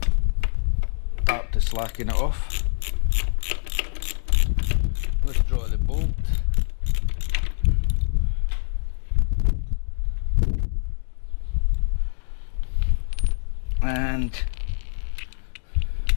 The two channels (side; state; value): right; silent; 59 dB below the other